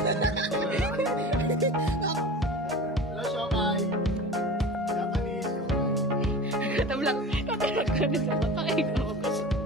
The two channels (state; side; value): normal; both; correlation 0.35